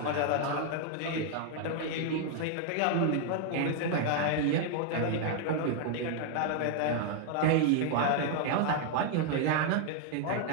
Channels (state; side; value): different; both; correlation 0.00